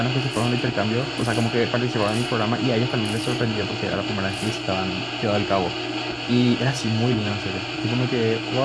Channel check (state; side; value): identical; both; correlation 1.00